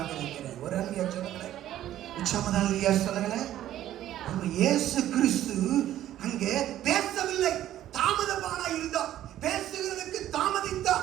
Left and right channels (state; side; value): quieter; left; 12.7 dB